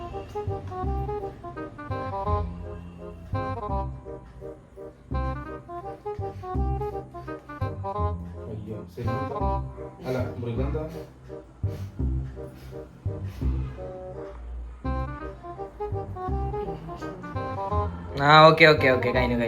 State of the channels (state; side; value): identical; both; correlation 1.00